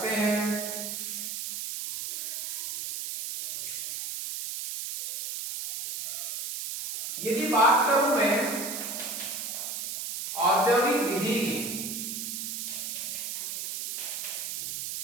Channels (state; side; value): noise; right; hiss, 5 dB below the sound